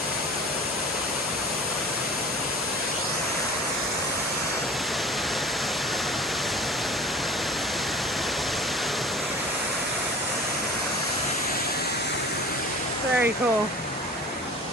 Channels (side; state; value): both; normal; correlation 0.40